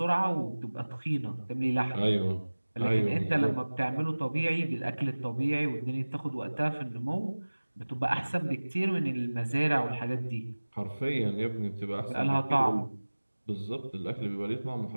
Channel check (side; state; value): both; inverted; correlation -1.00